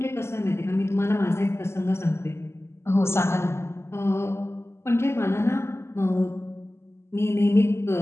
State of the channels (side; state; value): right; late; 0.13 ms